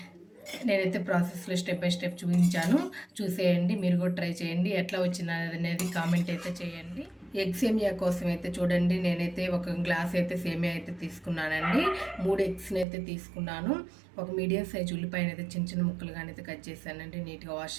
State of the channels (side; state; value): left; drops out; at 12.9 s